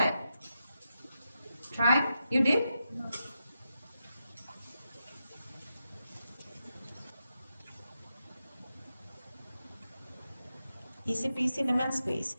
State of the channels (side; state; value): both; inverted; correlation -0.87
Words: Try? You did? No. Easy peasy lemon squeeze.